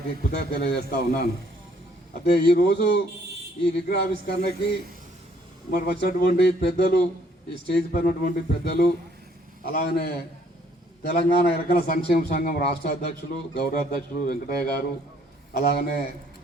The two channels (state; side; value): normal; both; correlation 0.64